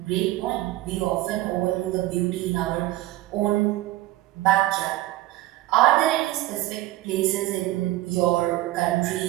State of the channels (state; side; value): quieter; left; 16.6 dB